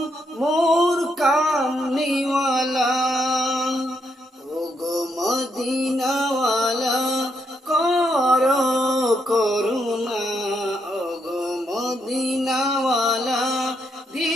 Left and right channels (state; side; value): normal; both; correlation 0.77